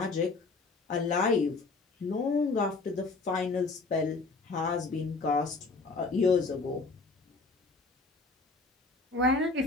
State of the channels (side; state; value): right; quieter; 3.8 dB